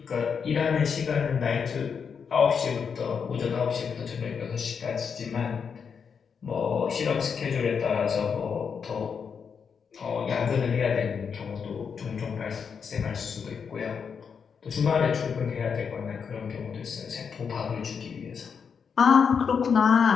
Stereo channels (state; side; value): quieter; right; 6.4 dB